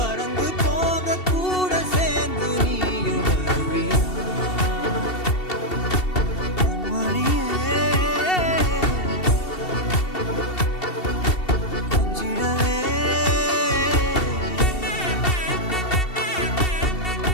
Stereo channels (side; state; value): right; late; 2.7 ms